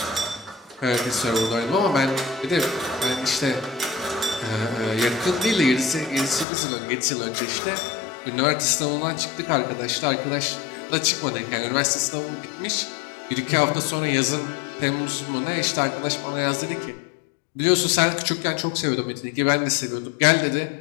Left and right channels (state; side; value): drops out; right; at 6.5 s